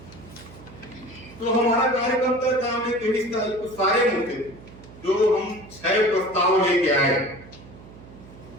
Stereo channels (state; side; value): noise; right; hum, 19 dB below the sound